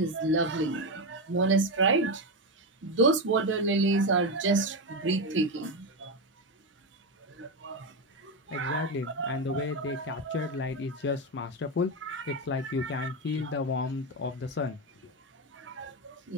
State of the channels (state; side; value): normal; both; correlation 0.11